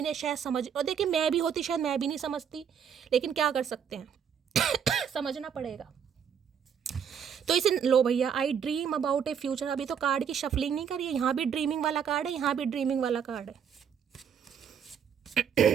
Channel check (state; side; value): quieter; left; 7.7 dB